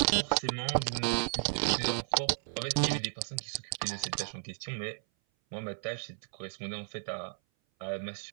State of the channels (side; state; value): left; silent; 55 dB below the other